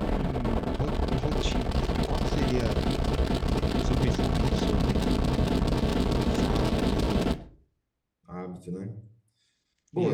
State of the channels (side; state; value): both; identical; correlation 1.00